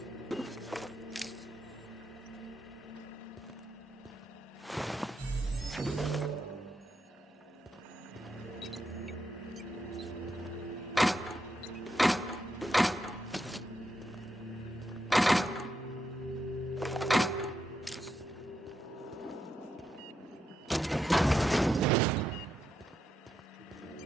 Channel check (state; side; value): normal; both; correlation 0.83